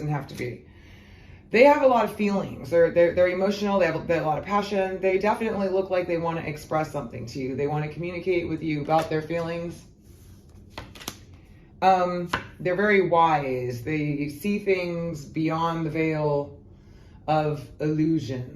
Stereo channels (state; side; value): identical; both; correlation 1.00